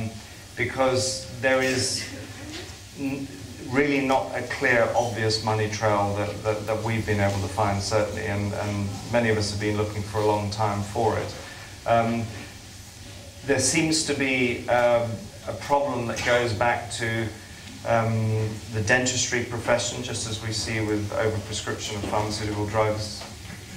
Because there is really not a clear, obvious money trail that we've been able to find, certainly, and many of us have been looking for a long time for it. There seems to be a problem that goes back to the dentistry profession, just as we see with overprescription of pharmaceutical drugs,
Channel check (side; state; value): both; identical; correlation 1.00